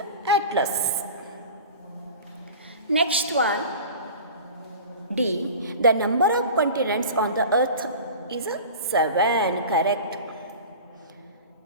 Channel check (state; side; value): inverted; both; correlation -0.36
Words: atlas. Next one. D. The number of continents on the Earth is 7. Correct.